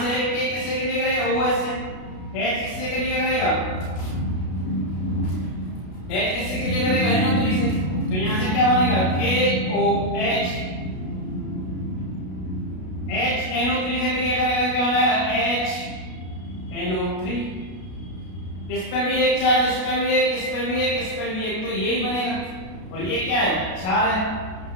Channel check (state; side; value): late; right; 33 ms